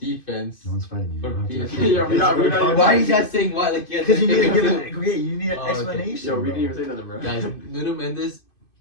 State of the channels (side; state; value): right; late; 2.5 ms